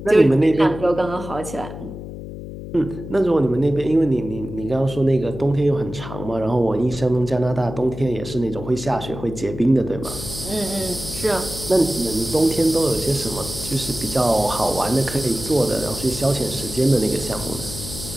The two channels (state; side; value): noise; left; hum, 10 dB below the sound